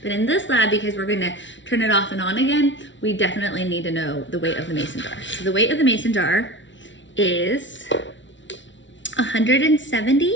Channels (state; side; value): late; right; 0.55 ms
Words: But in this lab, because we're going to turn it off and on again, we definitely need to know the weight of the mason jar. So the weight of the mason jar is